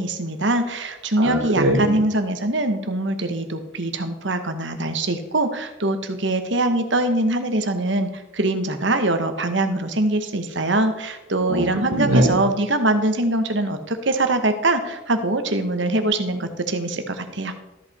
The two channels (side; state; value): both; normal; correlation 0.24